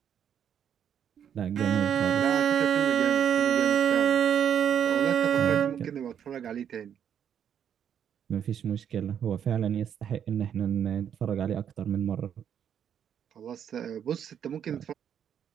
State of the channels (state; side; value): quieter; left; 8.7 dB